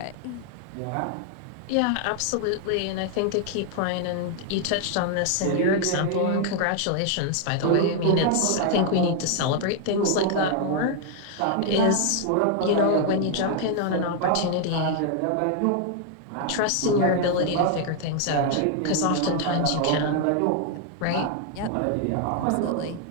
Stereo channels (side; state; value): both; different; correlation 0.00